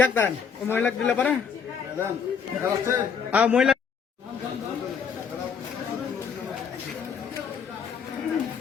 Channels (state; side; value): quieter; right; 6.6 dB